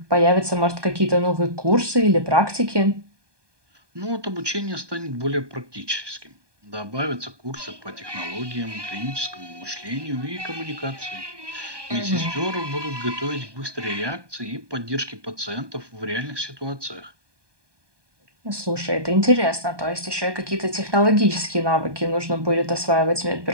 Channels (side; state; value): left; late; 1.2 ms